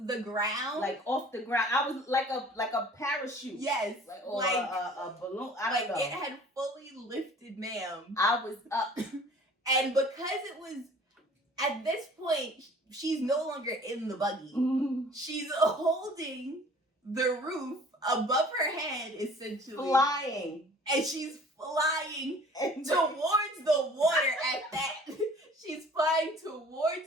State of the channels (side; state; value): both; normal; correlation 0.49